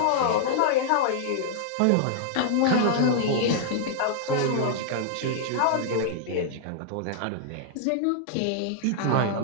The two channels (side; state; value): both; different; correlation -0.01